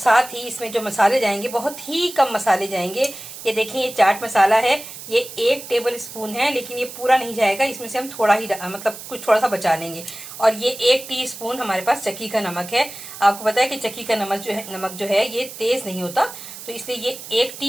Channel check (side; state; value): right; noise; hiss, 13 dB below the sound